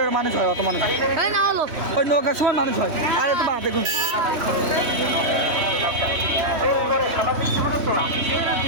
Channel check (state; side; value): late; left; 3.1 ms